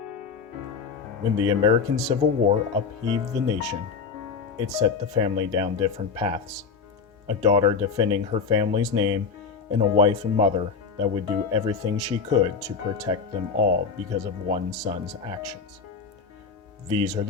When the American Civil War upheaved the nation, it set the family down different paths. A daughter defending her family's name, and a wife and mother that would do everything she could to protect them all because of one son's actions. These are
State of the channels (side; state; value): right; quieter; 5.4 dB